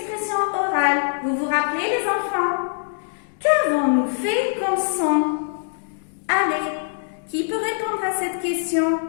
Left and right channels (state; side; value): silent; right; digital silence